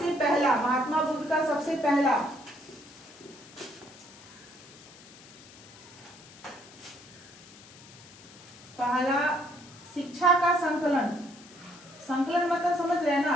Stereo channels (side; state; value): left; noise; hiss, 20 dB below the sound